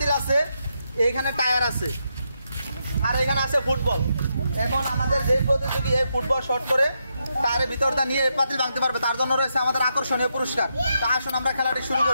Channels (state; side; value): inverted; both; correlation -0.82